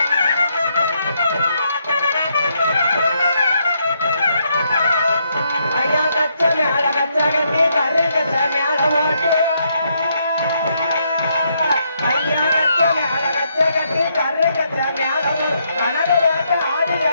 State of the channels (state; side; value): inverted; both; correlation -0.76